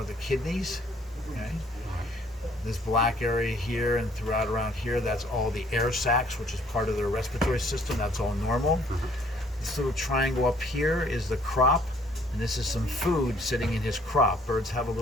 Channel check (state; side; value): normal; both; correlation 0.61